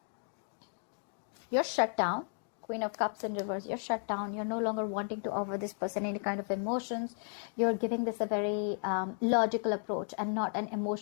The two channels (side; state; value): right; silent; 55 dB below the other